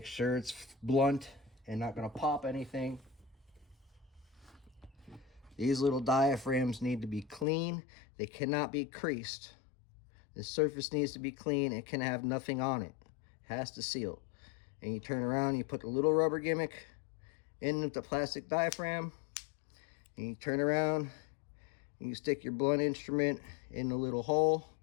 sure it's blunt and not going to pop anything. These little diaphragms need to be clean. They cannot be creased. The surface needs to be clean. It can have nothing on it. It has to seal. And you turn around, you put the little rubber gimmick in with the plastic diaphragm, and you turn around, and you stick your blunt instrument in the little hole,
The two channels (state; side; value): drops out; right; at 7.5 s